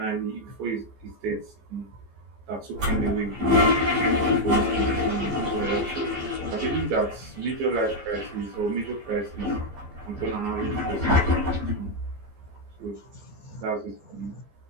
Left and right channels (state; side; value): late; left; 15 ms